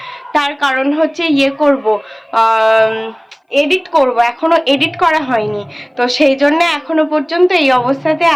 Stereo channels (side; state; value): both; identical; correlation 1.00